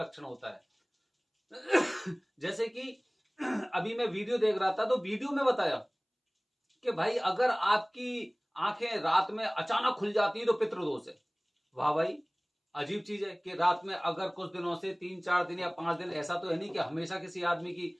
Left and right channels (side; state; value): both; identical; correlation 1.00